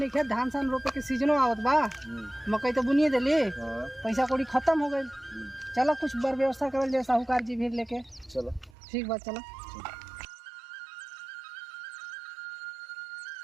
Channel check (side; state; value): left; drops out; at 8.8 s